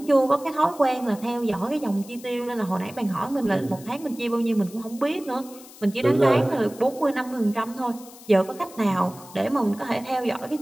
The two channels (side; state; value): left; noise; hiss, 20 dB below the sound